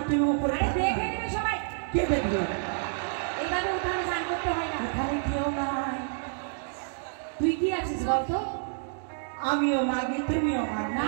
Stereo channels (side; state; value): left; silent; digital silence